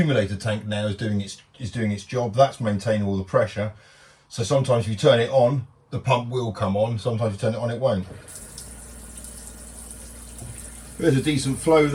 tank now is doing its job. That's maintaining all the pressure. So sometimes if you turn it on, the pump will come on. Sometimes you turn it on, it won't. There's a decent flow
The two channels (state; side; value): identical; both; correlation 1.00